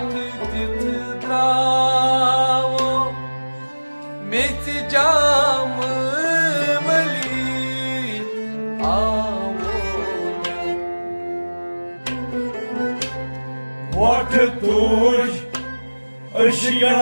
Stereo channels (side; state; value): both; inverted; correlation -1.00